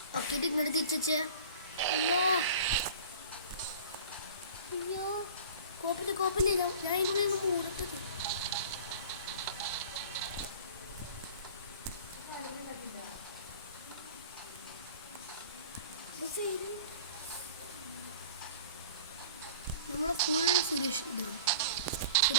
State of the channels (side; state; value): both; inverted; correlation -0.42